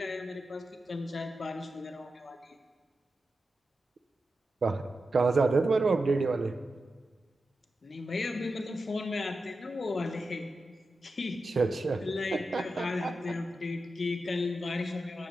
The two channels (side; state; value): both; normal; correlation 0.90